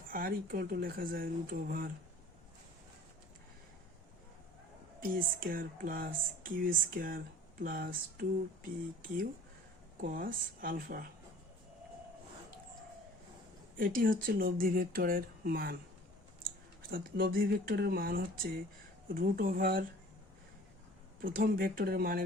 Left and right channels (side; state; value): both; normal; correlation 0.47